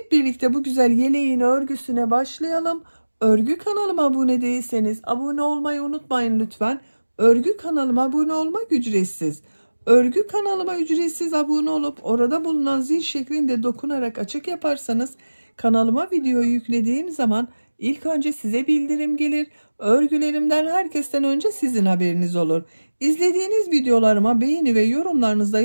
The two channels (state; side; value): inverted; both; correlation -1.00